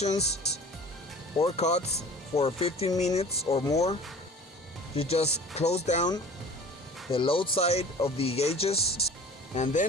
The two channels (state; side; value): normal; both; correlation 0.44